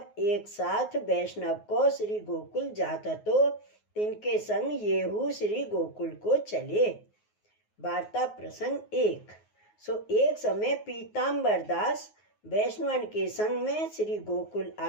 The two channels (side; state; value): right; late; 9.5 ms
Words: एक साथ वैष्णव को श्री गोकुल जाता, तो तिनके संग येहू श्री गोकुल को चले। वार्ता प्रसंग 1। सो एक समय पीताम्बर दास वैष्णवन के संग में श्री गोकुल